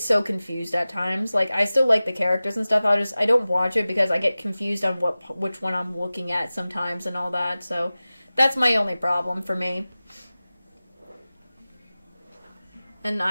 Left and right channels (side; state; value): both; inverted; correlation -0.97